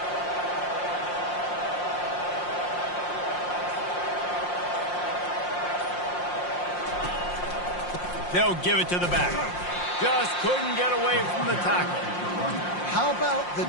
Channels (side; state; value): right; late; 5.6 ms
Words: They'll give it to the back. Just couldn't get away from the tackle. How about the